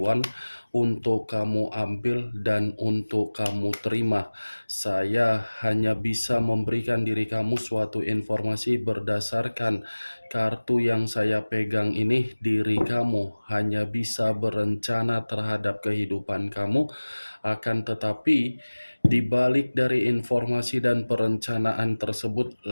untuk kamu ambil dan untuk kamu terima. Saya hanya bisa memberikan diri kamu suatu informasi berdasarkan kartu yang saya pegang ini. Diri kamu hanya bisa berencana terhadap kehidupan kamu, akan tetapi di balik dari informasi dan perencanaan tersebut,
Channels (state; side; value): inverted; both; correlation -1.00